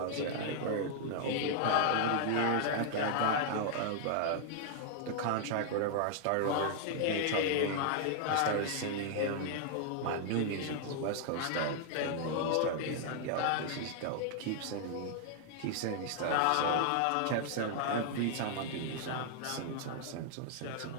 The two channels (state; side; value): different; both; correlation 0.00